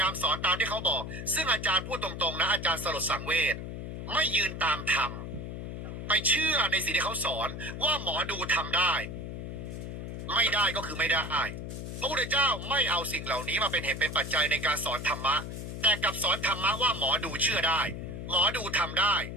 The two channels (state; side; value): noise; left; hum, 7 dB below the sound